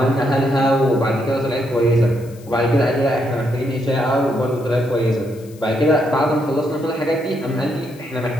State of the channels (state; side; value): noise; left; hiss, 25 dB below the sound